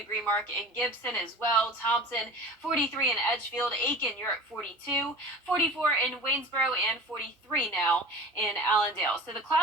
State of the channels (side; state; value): both; normal; correlation 0.39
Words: mark in Gibson as well. Thompson, 43 in Edgefield. Aiken, you're at 42. 44 in Waynesboro, and 43 now in Allendale. So the